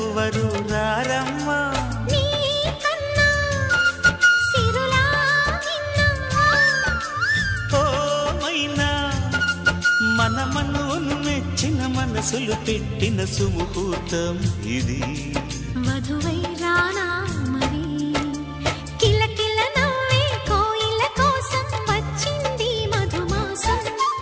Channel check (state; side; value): identical; both; correlation 1.00